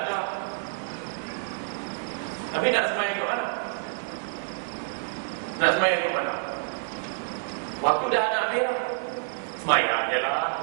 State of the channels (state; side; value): silent; left; digital silence